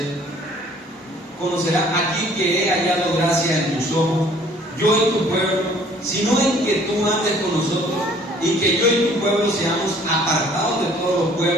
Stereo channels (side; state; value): both; normal; correlation 0.56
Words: Conocerá aquí que he hallado gracia en tus ojos, yo y tu pueblo, sino en que tú andes con nosotros y que yo y tu pueblo seamos apartados de todos los